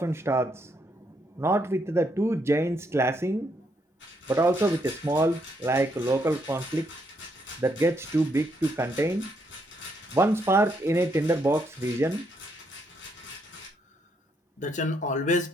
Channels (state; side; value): normal; both; correlation 0.75